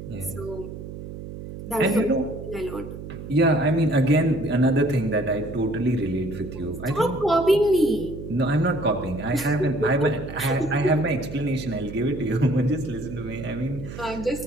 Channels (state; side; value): noise; right; hum, 11 dB below the sound